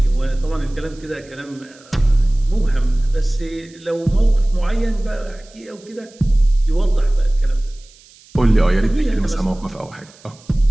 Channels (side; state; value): right; noise; hiss, 26 dB below the sound